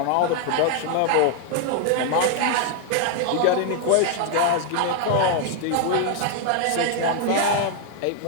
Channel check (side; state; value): both; different; correlation 0.00